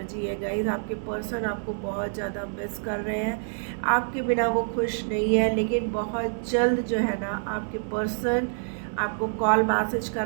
है गाइज। आपके पर्सन आपको बहुत ज़्यादा मिस कर रहे हैं, आपके बिना वो खुश नहीं है। लेकिन बहुत जल्द जो है ना आपके पर्सन आपको कॉल मैसेज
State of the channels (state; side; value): silent; left; digital silence